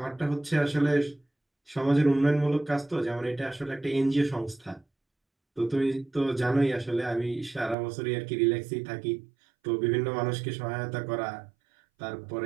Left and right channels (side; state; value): left; drops out; at 7.8 s